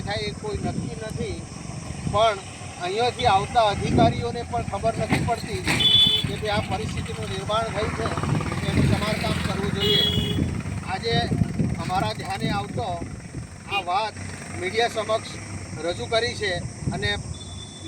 થાય એ કોઈ નક્કી નથી, પણ અહીંયાથી આવતા અધિકારીઓને પણ ખબર નથી પડતી કે ભાઈ આ પરિસ્થિતિનું નિર્માણ થયું છે, એનું સમારકામ કરવું જોઈએ. આજે અમારા ધ્યાને આવતો આ વાત મીડિયા સમક્ષ રજૂ કરી છે અને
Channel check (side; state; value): both; identical; correlation 1.00